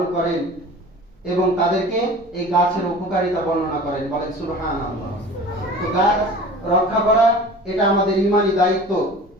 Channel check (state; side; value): normal; both; correlation 0.40